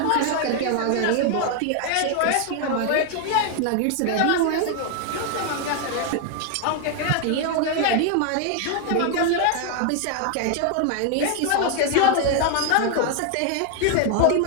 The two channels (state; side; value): different; both; correlation 0.00